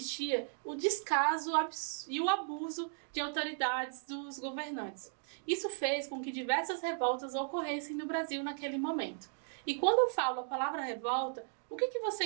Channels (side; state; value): left; silent; digital silence